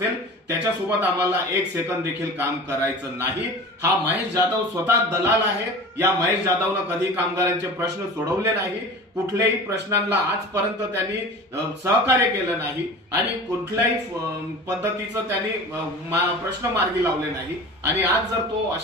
त्याच्यासोबत आम्हाला एक सेकंद देखील काम करायचं नाही। हा महेश जाधव स्वतः दलाल आहे। या महेश जाधवनं कधी कामगारांचे प्रश्न सोडवले नाही, कुठल्याही प्रश्नांना आजपर्यंत त्यांनी सहकार्य केलं नाही आणि कुठल्याही पद्धतीचं त्यांनी प्रश्न मार्गी लावले नाही। आणि आज जर तो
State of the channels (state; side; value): normal; both; correlation 0.37